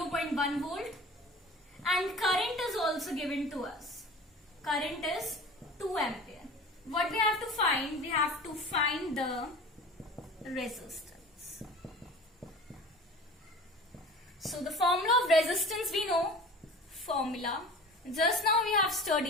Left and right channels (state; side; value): normal; both; correlation 0.39